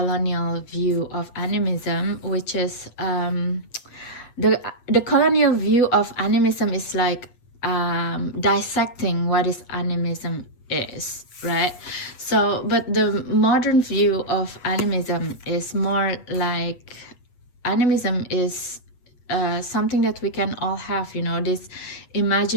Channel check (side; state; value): right; late; 8.2 ms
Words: view of animism, which is the colonial view of animism is like dissecting what is animism is, right? So but the modern view of animism is more like, animism is something that we can all have, you know, this